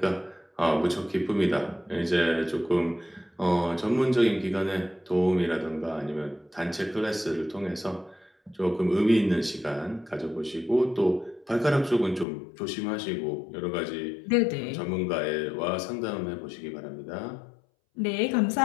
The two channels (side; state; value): right; drops out; at 12.2 s